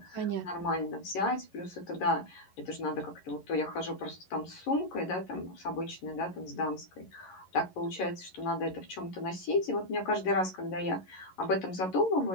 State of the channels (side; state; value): right; late; 11 ms